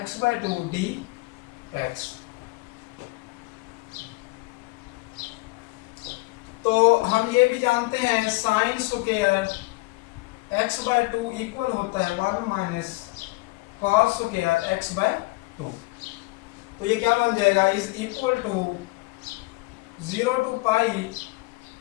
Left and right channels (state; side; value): quieter; right; 23.3 dB